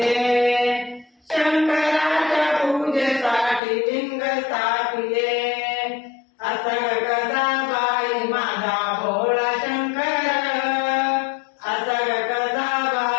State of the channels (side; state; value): right; drops out; at 3.6 s